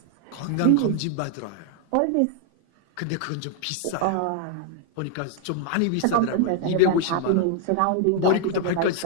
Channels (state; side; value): different; both; correlation 0.00